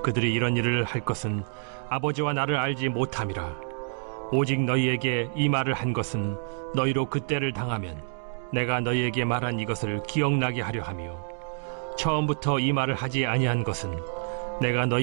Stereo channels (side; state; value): left; silent; digital silence